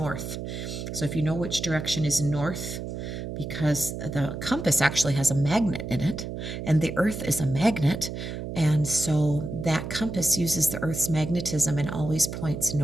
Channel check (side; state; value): right; noise; hum, 7 dB below the sound